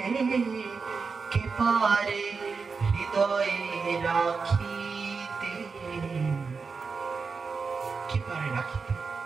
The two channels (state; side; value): quieter; left; 4.9 dB